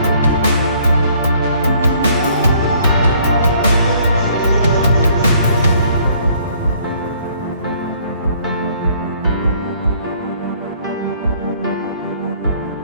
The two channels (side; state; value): both; inverted; correlation -0.61